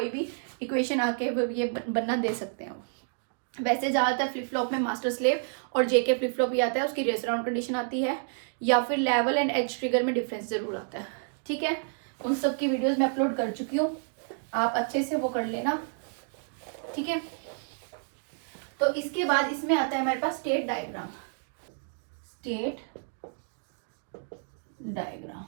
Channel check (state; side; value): silent; left; 58 dB below the other